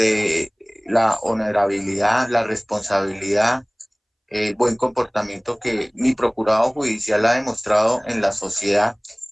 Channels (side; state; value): both; identical; correlation 1.00